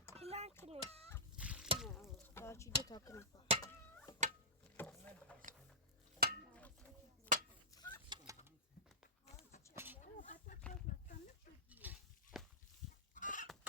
Plan kırış. تا چیده تا کنم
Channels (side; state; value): both; normal; correlation -0.14